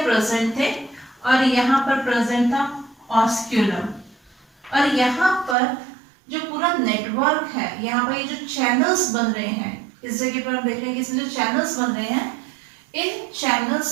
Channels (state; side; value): drops out; left; at 5.6 s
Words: प्रेजेंट थे, और यहाँ पर प्रेजेंट था ऑस्क्यूलम। और यहाँ पर जो पूरा नेटवर्क है, यहाँ पर ये जो चैनल्स बन रहे हैं, इस जगह पर हम देख रहे हैं कि इसमें जो चैनल्स बन रहे हैं, इन